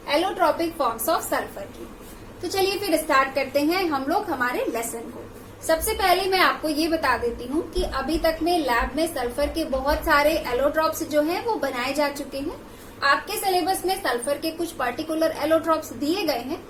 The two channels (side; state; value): both; identical; correlation 1.00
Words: एलोट्रॉपिक फॉर्म्स ऑफ सल्फर की। तो चलिए फिर स्टार्ट करते हैं हम लोग हमारे लेसन को। सबसे पहले मैं आपको ये बता देती हूँ कि अभी तक में लैब में सल्फर के बहुत सारे एलोट्रॉप्स जो हैं वो बनाए जा चुके हैं। आपके सिलेबस में सल्फर के कुछ पर्टिकुलर एलोट्रॉप्स दिए गए हैं।